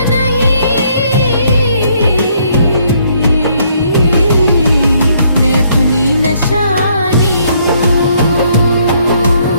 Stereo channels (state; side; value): inverted; both; correlation -0.68